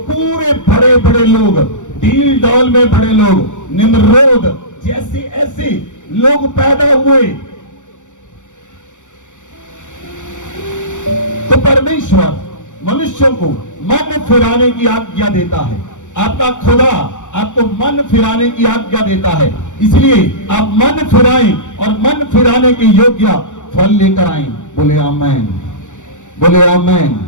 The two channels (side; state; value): right; late; 0.85 ms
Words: बड़े बड़े लोग, डील डॉल में बड़े लोग, निम्रोद जैसे ऐसे लोग पैदा हुए। तो परमेश्वर मनुष्यों को मन फिराने की आज्ञा देता है। आपका खुदा आपको मन फिराने की आज्ञा देता है, इसलिए आप मन फिराएं और मन फिराने के योग्य फल लेकर आएं। बोले आमेन, बोले आमेन,